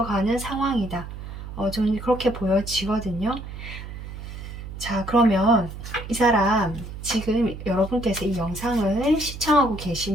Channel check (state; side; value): noise; right; hum, 10 dB below the sound